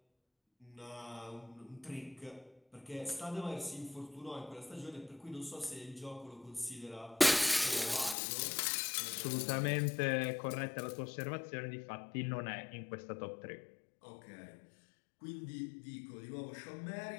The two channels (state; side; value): drops out; right; at 8.2 s